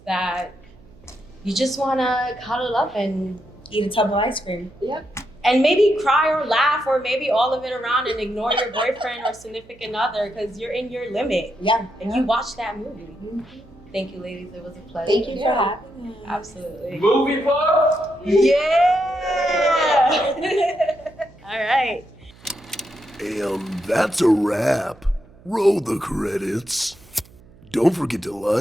that you just wanna cuddle up and Eat a tub of ice cream. Yep. And maybe cry or laugh or maybe all of it around and ignore your boyfriend or significant other because you're in your limit. Yeah. And you watched that movie. Thank you, ladies. It was a pleasure. Thank you for having me. Absolutely. Movie buff? Yeah! All right. And that's a wrap. Roll the credits. Don't forget to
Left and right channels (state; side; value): noise; right; hum, 25 dB below the sound